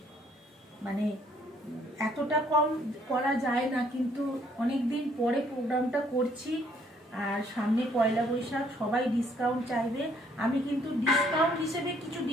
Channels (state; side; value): normal; both; correlation 0.65